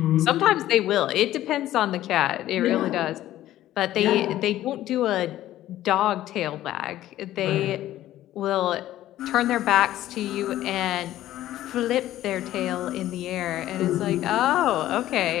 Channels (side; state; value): right; quieter; 13.9 dB